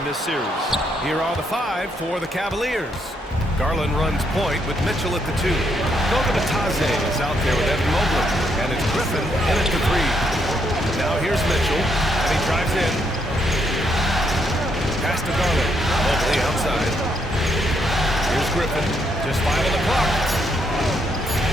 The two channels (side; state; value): both; normal; correlation 0.75